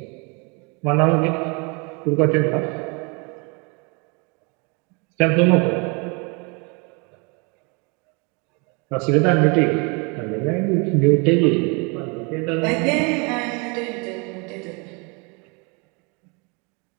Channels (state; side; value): quieter; left; 31.6 dB